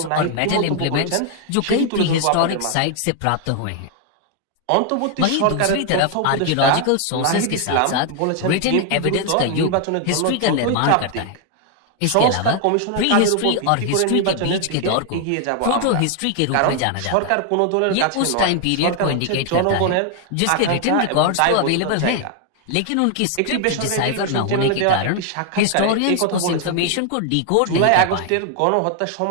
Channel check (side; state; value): both; different; correlation 0.00